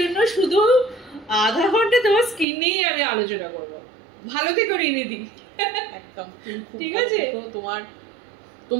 শুধু আধা ঘন্টা তোমার স্কিন নিয়েই আমি আলোচনা করব। ভালো থেকো রিনিদি। একদম ঠিক আছে।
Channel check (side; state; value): left; drops out; at 2.5 s